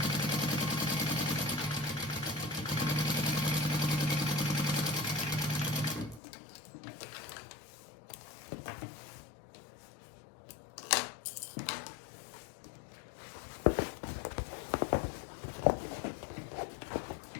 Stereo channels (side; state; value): right; drops out; at 6.2 s